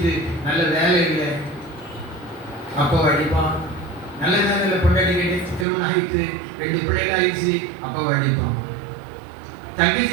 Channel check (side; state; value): left; drops out; at 5.7 s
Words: நல்ல வேலை இல்லை, அப்போ அடிப்பான். நல்ல வேலையில் பொண்டாட்டி கேட்டு திருமணம் ஆகிட்டு 2 பிள்ளைகள் ஆயிடுச்சு, அப்போ அடிப்பான்.